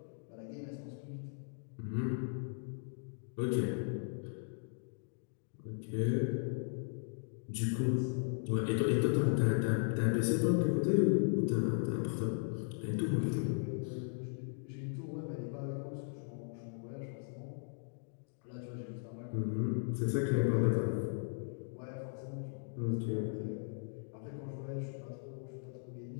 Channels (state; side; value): silent; right; digital silence